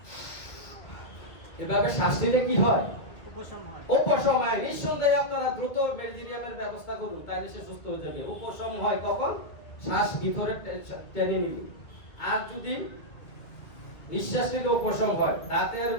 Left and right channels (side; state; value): right; late; 1.9 ms